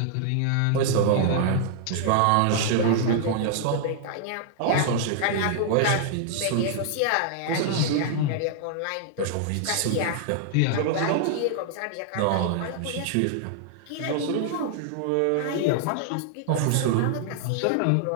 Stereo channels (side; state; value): both; different; correlation -0.01